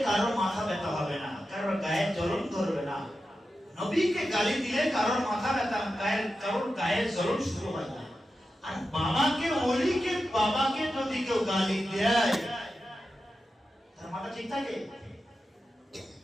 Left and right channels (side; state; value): both; normal; correlation 0.91